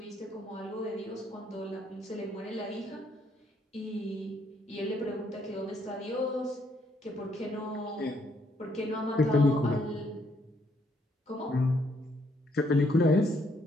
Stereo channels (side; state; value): both; normal; correlation 0.71